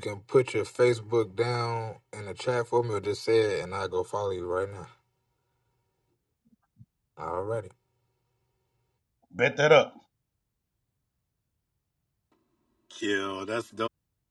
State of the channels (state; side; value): identical; both; correlation 1.00